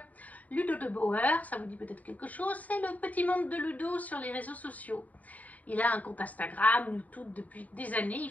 Ludo de Bauer, ça vous dit peut-être quelque chose, c'est le petit monde de Ludo sur les réseaux sociaux. Il a un compte Instagram, YouTube depuis des années, il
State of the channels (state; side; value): late; right; 0.073 ms